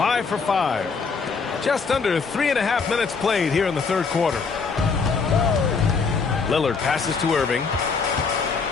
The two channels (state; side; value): quieter; right; 5.0 dB